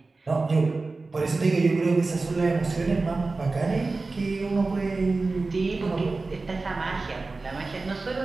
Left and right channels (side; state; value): left; quieter; 3.6 dB